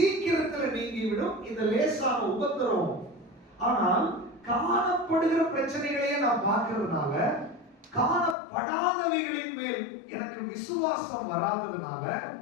நீங்கிவிடும் இந்த லேசான உபத்திரவம். ஆனால் காணப்படுகிற பிரச்சனைகளையே நான் பார்க்கிறதுனால, காணப்படாதவைகளின் மேல் எனக்கு விசுவாசம் வராததுனால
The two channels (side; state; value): right; drops out; at 8.3 s